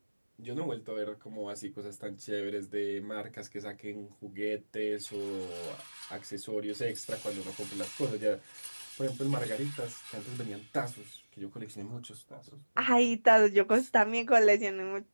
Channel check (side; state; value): both; inverted; correlation -1.00